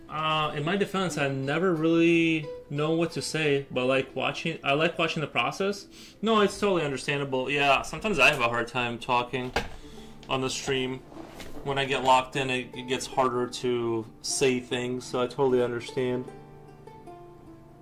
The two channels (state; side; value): identical; both; correlation 1.00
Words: In my defense, I never really know what to say, but I like watching the process. No, it's totally understandable. Yeah, sometimes I have a hard time talking on the stream. When I get locked in, it gets harder to say things, so I totally understand.